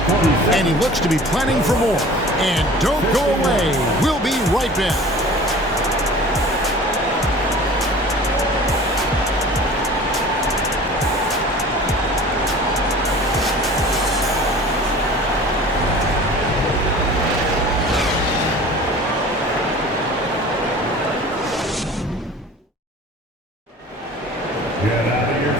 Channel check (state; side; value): normal; both; correlation 0.42